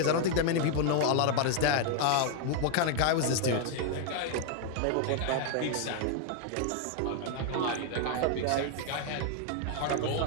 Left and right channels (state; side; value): different; both; correlation 0.00